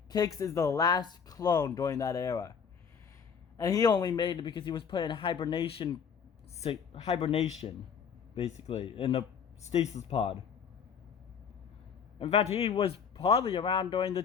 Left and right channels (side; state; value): right; quieter; 6.7 dB